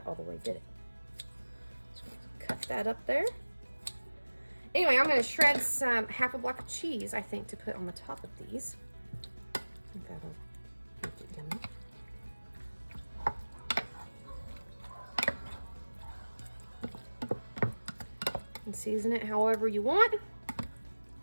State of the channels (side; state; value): both; inverted; correlation -1.00